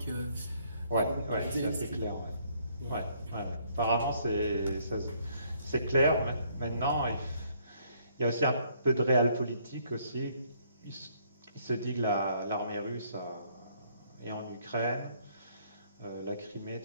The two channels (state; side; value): inverted; both; correlation -0.66